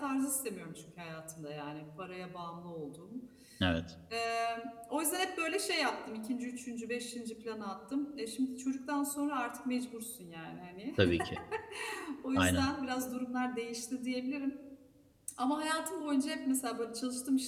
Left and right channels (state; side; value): identical; both; correlation 1.00